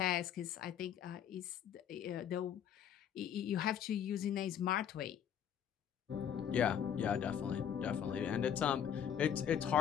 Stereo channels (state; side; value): quieter; right; 9.1 dB